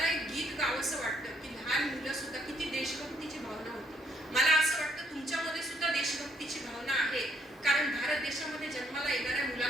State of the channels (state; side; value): normal; both; correlation 0.69